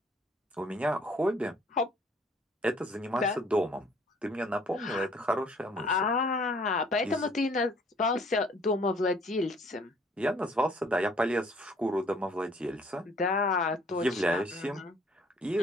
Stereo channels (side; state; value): both; normal; correlation 0.59